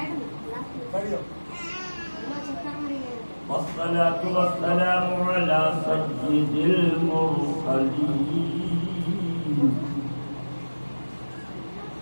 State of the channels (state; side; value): inverted; both; correlation -1.00